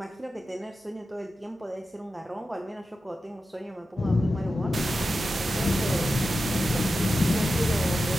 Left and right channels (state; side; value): normal; both; correlation 0.92